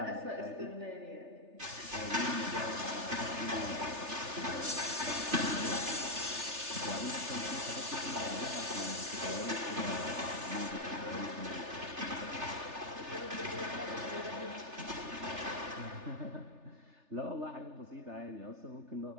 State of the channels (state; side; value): late; left; 3.4 ms